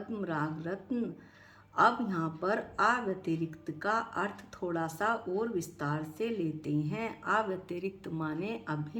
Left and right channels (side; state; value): both; identical; correlation 1.00